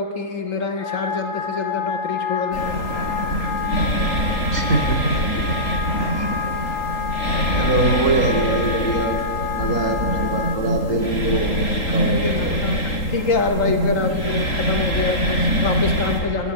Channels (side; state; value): right; late; 3.8 ms